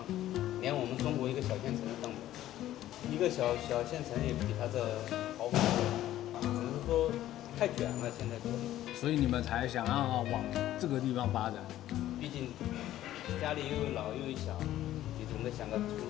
連我們中國一個小縣城都當不了，一個小縣城也比他這好很多，只是說太捲了，現在國內。所以你們才想要往這個地方發展？畢竟家裡又有老又有小，你總得想個出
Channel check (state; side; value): quieter; right; 13.4 dB